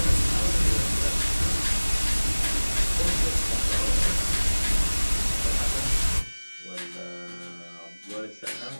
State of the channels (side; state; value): both; inverted; correlation -1.00